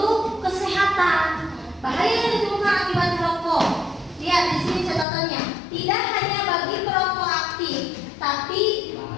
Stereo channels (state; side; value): drops out; right; at 5.1 s